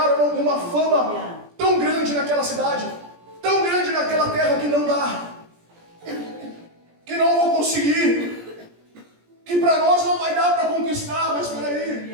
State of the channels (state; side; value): late; left; 17 ms